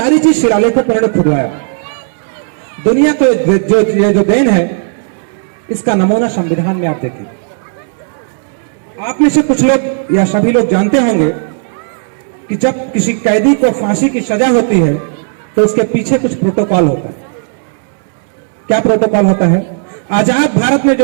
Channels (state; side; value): silent; left; digital silence